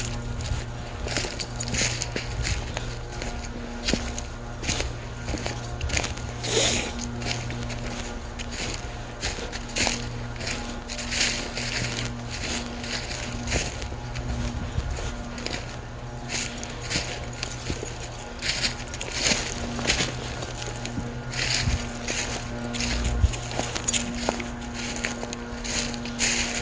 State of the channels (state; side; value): identical; both; correlation 1.00